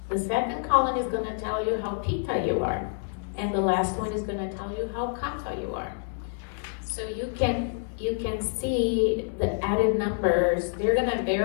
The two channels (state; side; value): silent; right; digital silence